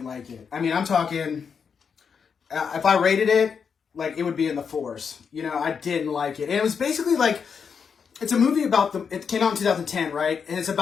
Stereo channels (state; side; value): quieter; right; 6.4 dB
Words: like it. I mean, I'm talking, if I rated it, like it would be in the 4s. You know, I didn't like it. And it was basically like, it's a movie about it came out in 2010, right? And it's